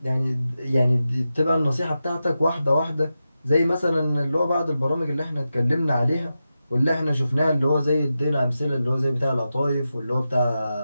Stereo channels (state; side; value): inverted; both; correlation -0.91